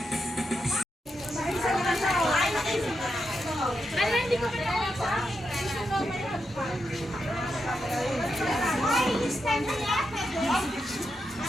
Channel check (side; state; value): both; normal; correlation 0.85